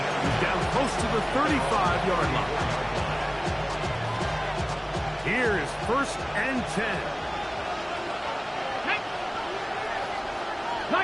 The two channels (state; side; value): identical; both; correlation 1.00